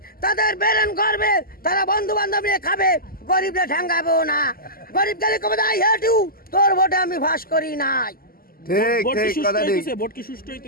তাদের বেরেন করবে, তারা বন্ধু বান্ধব নিয়ে খাবে, গরিবরা ঠ্যাঙ্গাবেও না। গরিব গেলে কবে আই হেট ইউ, তোর ভোটে আমি ফাঁস করি নাই।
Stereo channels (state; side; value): late; right; 0.42 ms